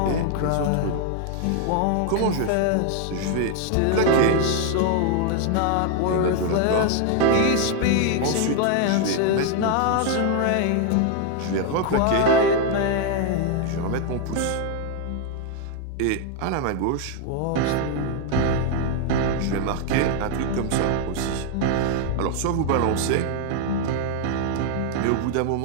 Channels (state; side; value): different; both; correlation 0.00